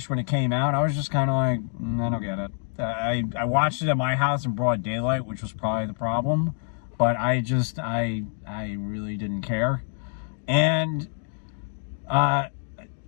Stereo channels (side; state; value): right; silent; 61 dB below the other